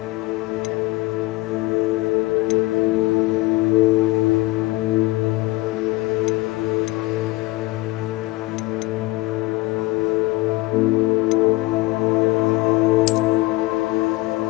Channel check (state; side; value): quieter; right; 20.7 dB